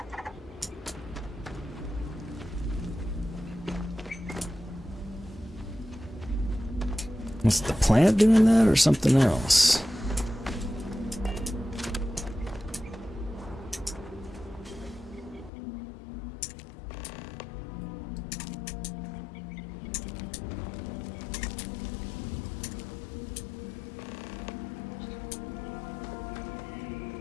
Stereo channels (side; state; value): right; drops out; at 15.5 s